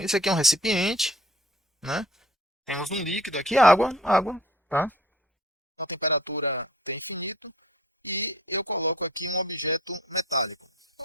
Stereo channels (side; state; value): both; normal; correlation 0.50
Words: aqui é um recipiente, né? Temos um líquido aqui, água, tá? A temperatura é infinita e eu coloco aqui um objeto metálico.